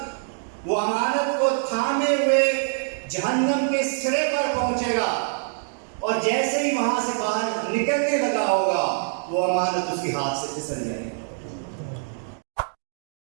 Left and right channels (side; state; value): left; silent; 62 dB below the other